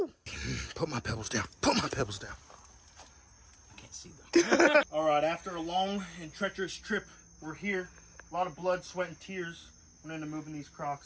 Put my pebbles down. I can't see them. All right, after a long and treacherous trip, we're here. A lot of blood, sweat, and tears went into moving these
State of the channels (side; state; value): both; identical; correlation 1.00